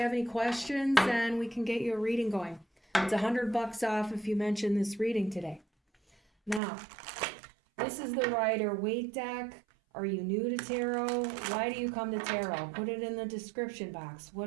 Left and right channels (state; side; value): drops out; left; at 6.6 s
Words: any questions, and we can get you a reading going. It's $100 off if you mention this reading today. Now, this is the Rider-Waite deck. Are you new to tarot? Why do you come to tarot? Put it in the description box.